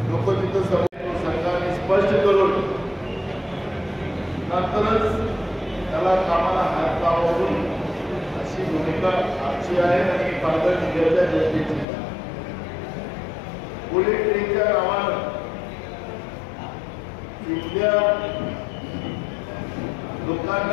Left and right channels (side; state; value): right; drops out; at 11.9 s